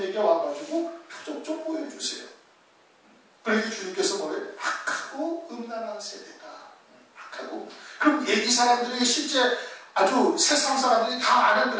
와가지고 표적 좀 보여주세요. 그러니까 주님께서 뭐래요? 악하고 음란한 세대다. 악하고. 그럼 얘기 사람들이 실제 아주 세상 사람들이 다 아는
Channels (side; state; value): both; identical; correlation 1.00